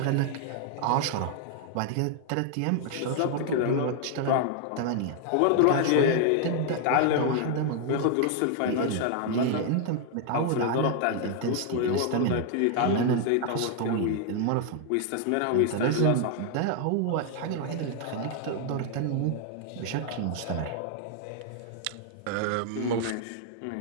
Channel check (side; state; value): both; different; correlation 0.00